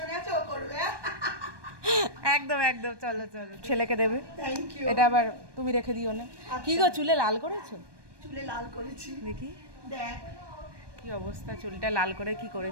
আছে ও করবে। একদম একদম, চলো চলো, ছেলেকে দেবে। Thank you. এটা আবার তুমি রেখে দিও না। কি গো, চুলে লাল করেছো? চুলে লাল করেছি, দেখি দেখ কি অবস্থা, চুলটা লাল করে কি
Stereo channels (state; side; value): late; left; 1.2 ms